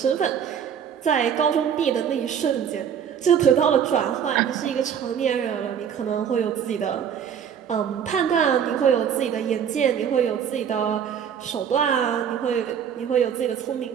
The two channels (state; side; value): quieter; left; 8.2 dB